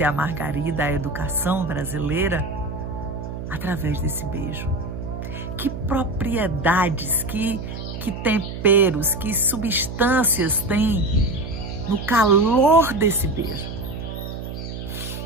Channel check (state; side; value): noise; right; hum, 8 dB below the sound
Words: a Margarida, a educação brasileira, através desse beijo? Que propriedades, que temperos, que substâncias tem no calor desse beijo?